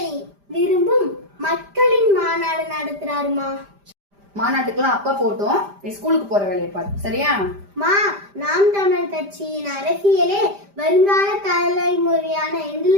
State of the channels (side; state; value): left; late; 5.0 ms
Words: விரும்பும் மக்களின் மாநாடு நடத்துறாருமா. மாநாட்டுக்கெல்லாம் அப்பா போட்டோம், நீ ஸ்கூலுக்கு போற வேலையை பாரு, சரியா? நாம் தமிழ் கட்சியின் அரசியலே வருங்கால தலைமுறையான